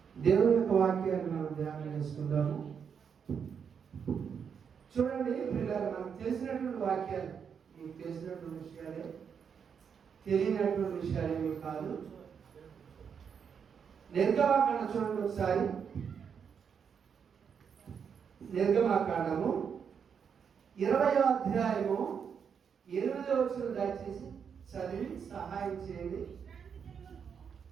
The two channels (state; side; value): quieter; left; 7.0 dB